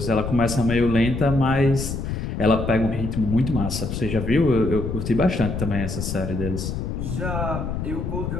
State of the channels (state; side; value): noise; left; rumble, 4 dB below the sound